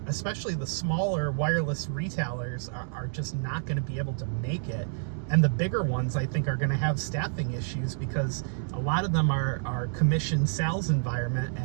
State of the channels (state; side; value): silent; left; digital silence